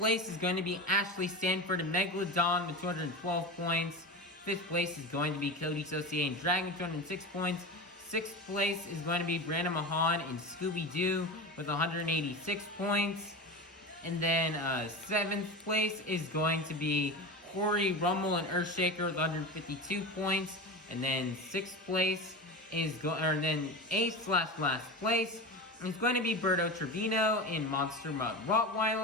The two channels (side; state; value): both; normal; correlation 0.25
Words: is going to be Ashley Sanford and Megalodon with 212 points. Fifth place is going to be Coty, Saucier, and Dragon with 206 points. Sixth place is going to be Brianna, Mahon, and Scooby-Doo with 186 points. And then seventh place is going to be Cory, Rummel, and Earthshaker with 152 points. And then sixth place is then eighth/last place is going to be Berto, Trevino, and Monster Mutt